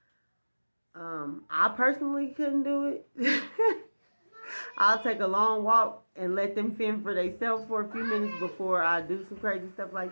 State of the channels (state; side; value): inverted; both; correlation -1.00